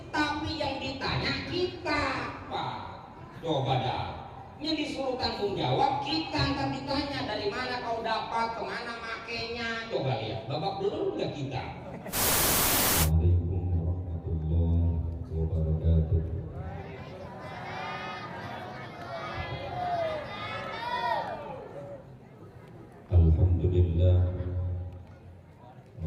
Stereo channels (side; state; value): both; identical; correlation 1.00